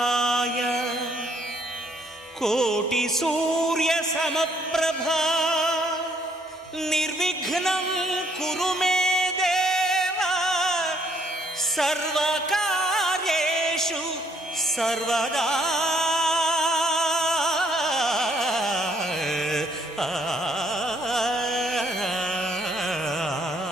కోటి సూర్య సమప్రభా నిర్విఘ్నం కురు మే దేవ సర్వకార్యేషు సర్వదా.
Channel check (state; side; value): normal; both; correlation 0.67